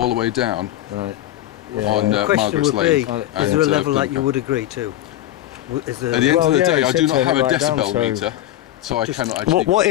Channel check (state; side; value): quieter; right; 13.6 dB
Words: the way down Right. on The question Margaret's would be, Lane. is there a and, level that you Plymouth. would agree to? Is there, At the end Well, of the yeah, day, it I do said not turn have it a right down, decibel so- meter, so I Just- cannot actually. What go